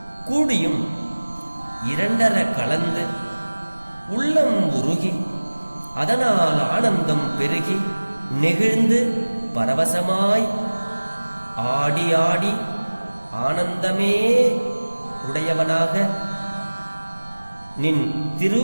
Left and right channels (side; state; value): both; inverted; correlation -1.00